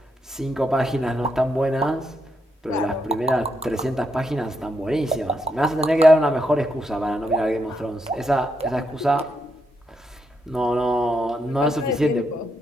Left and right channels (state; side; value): normal; both; correlation 0.80